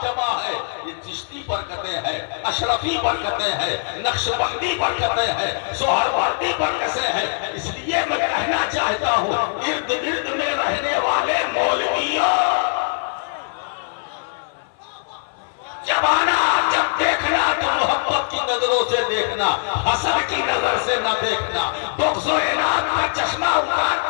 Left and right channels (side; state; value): right; silent; 57 dB below the other